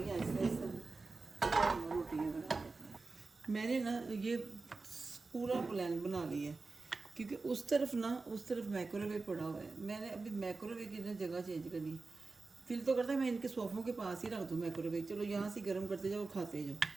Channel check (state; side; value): quieter; left; 3.8 dB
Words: ऐसे ऐसे रोटियाँ बना देती हैं। मैंने ना ये पूरा प्लान बना लिया है, क्योंकि उस तरफ माइक्रोवेव पड़ा हुआ है। मैंने अभी माइक्रोवेव की ना जगह चेंज करनी है। दिल तो करता है मैं इनके सोफ़ों के पास ही रख दूँ माइक्रोवेव, चलो यहाँ से गर्म करते जाओ और खाते जाओ।